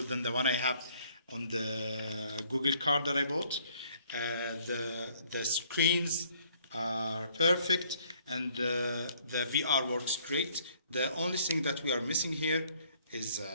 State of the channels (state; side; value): inverted; both; correlation -0.62